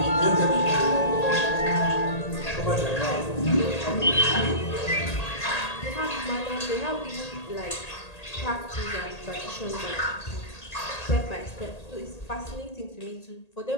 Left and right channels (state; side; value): late; right; 1.8 ms